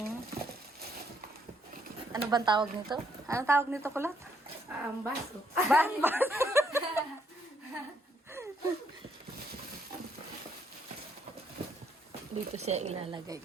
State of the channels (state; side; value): normal; both; correlation 0.72